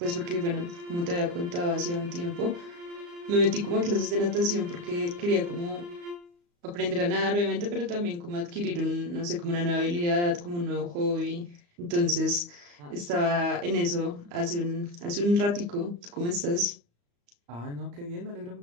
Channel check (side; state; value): left; late; 35 ms